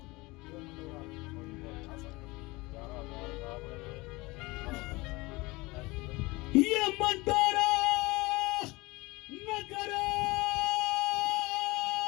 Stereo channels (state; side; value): quieter; right; 22.8 dB